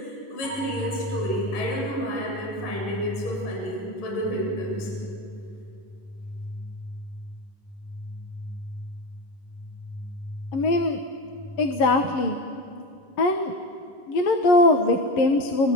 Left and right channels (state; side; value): late; right; 11 ms